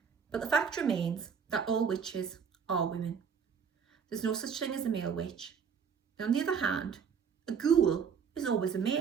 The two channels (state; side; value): quieter; left; 6.6 dB